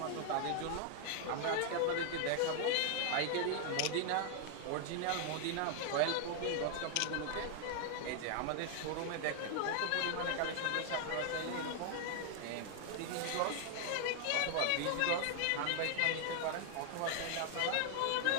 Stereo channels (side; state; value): both; different; correlation 0.00